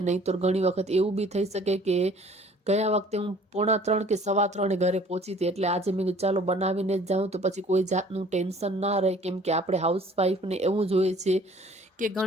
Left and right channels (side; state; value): both; normal; correlation 0.53